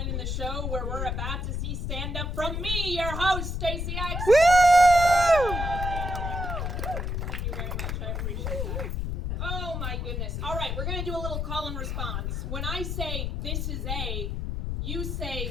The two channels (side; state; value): left; noise; rumble, 2 dB below the sound